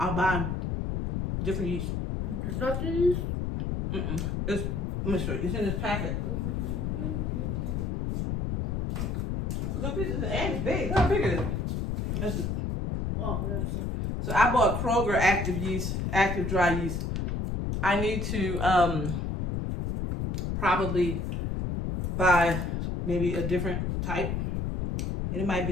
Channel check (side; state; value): left; noise; rumble, 1 dB below the sound